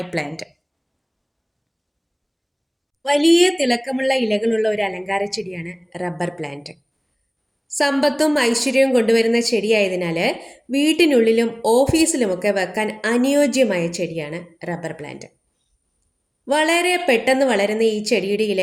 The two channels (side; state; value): both; identical; correlation 1.00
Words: പ്ലാന്റ്. വലിയ തിളക്കമുള്ള ഇലകളുള്ള ഒരു അലങ്കാര ചെടിയാണ് റബ്ബർ പ്ലാന്റ്. സമ്പത്തും ഐശ്വര്യവും കൊണ്ടുവരുന്ന ചെടിയായതിനാൽ വീട്ടിനുള്ളിലും ഓഫീസിലുമൊക്കെ വെക്കാൻ അനുയോജ്യമായ ചെടിയാണ് റബ്ബർ പ്ലാന്റ്. വളരെ പെട്ടെന്ന് വളരുന്ന ഈ ചെടിയുടെ